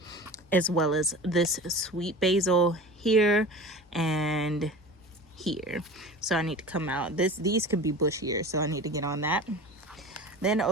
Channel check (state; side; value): normal; both; correlation 0.36